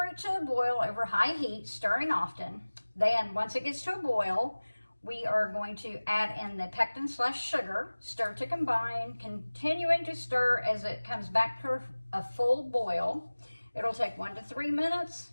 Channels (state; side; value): inverted; both; correlation -1.00